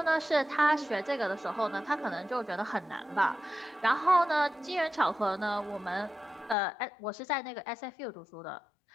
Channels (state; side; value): drops out; right; at 6.6 s